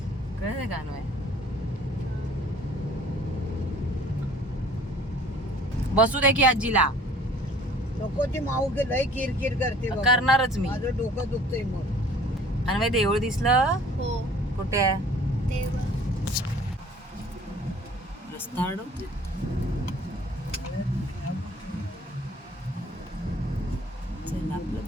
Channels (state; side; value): normal; both; correlation 0.53